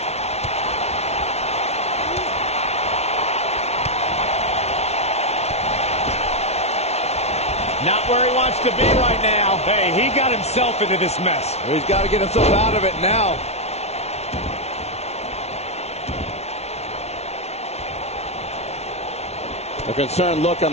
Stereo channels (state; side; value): late; right; 0.31 ms